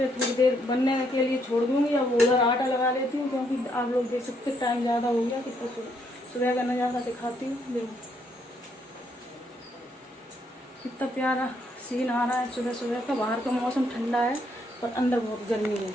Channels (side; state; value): both; normal; correlation 0.73